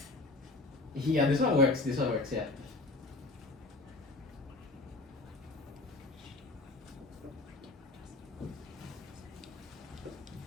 Yeah, this one works. This one works, yeah.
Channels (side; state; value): right; quieter; 3.1 dB